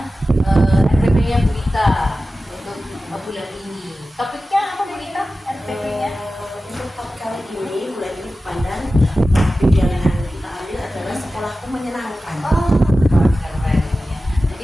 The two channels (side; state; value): both; normal; correlation 0.94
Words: RPP-nya Bu Ita untuk bulan ini. Topiknya apa Bu Ita? RPP-nya? Untuk topik kali ini, bulan ini pandang topik yang kita ambil adalah sekolahku menyenangkan. Oh, keren ya.